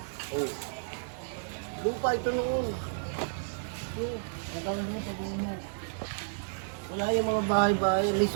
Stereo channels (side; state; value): left; silent; digital silence